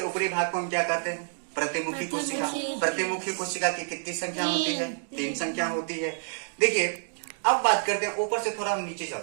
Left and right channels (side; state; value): left; silent; digital silence